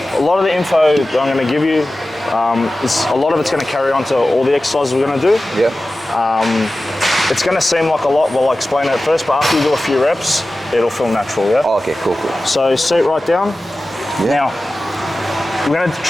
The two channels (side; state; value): both; normal; correlation 0.95